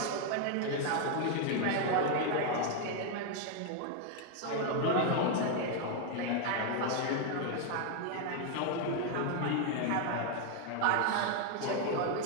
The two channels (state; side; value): different; both; correlation 0.00